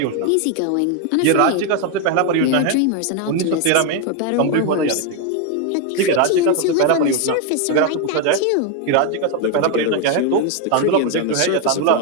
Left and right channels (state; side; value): different; both; correlation 0.01